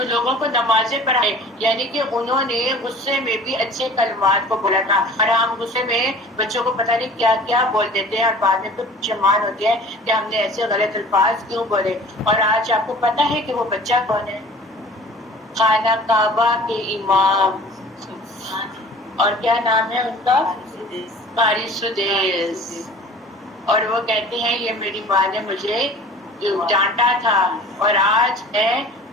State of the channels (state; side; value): normal; both; correlation 0.44